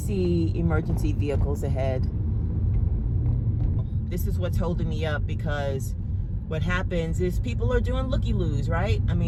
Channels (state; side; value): identical; both; correlation 1.00